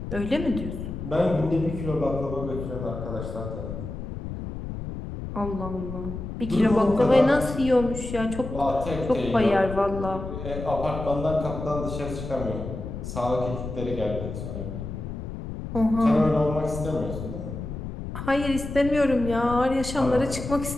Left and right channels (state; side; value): noise; left; rumble, 7 dB below the sound